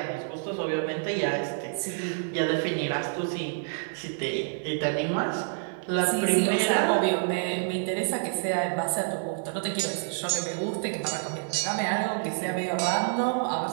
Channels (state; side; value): silent; left; digital silence